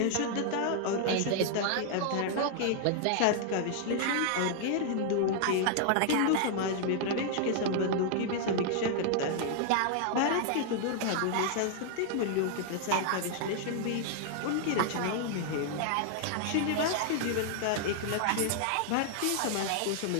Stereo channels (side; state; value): both; different; correlation 0.00